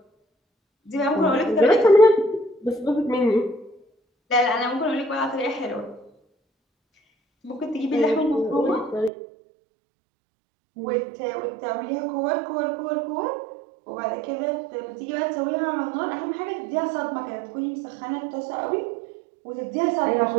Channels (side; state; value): left; drops out; at 9.1 s